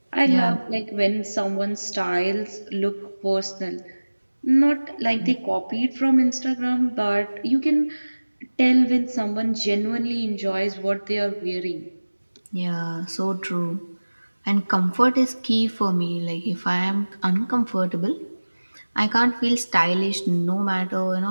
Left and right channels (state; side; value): inverted; both; correlation -1.00